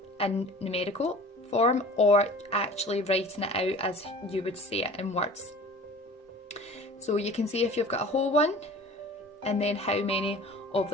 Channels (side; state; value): both; normal; correlation 0.43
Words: in numerical form, or actually writing it out as you would say it in words. So you can see if you've got a whole one and then how many of